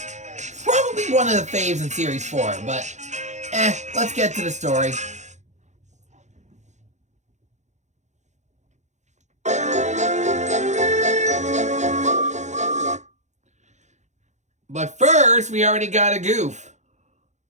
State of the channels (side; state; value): left; late; 0.34 ms